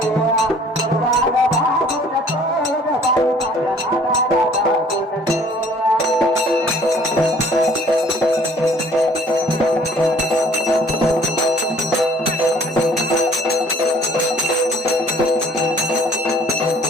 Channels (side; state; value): both; normal; correlation 0.55